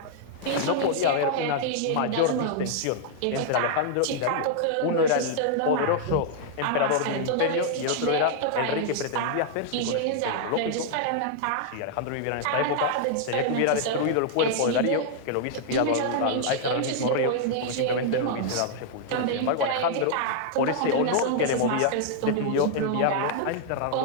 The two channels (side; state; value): both; different; correlation -0.01